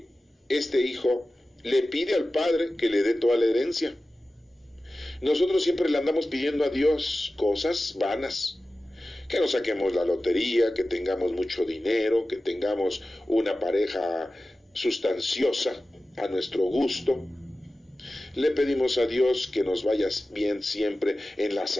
este hijo le pide al padre que le dé toda la herencia. Nosotros siempre le andamos pidiendo a Dios cosas vanas, que nos saquemos la lotería, que tengamos mucho dinero, que tengamos una pareja sustanciosa a nuestro gusto. Le pedimos a Dios que nos vaya bien siempre en la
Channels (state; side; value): normal; both; correlation 0.95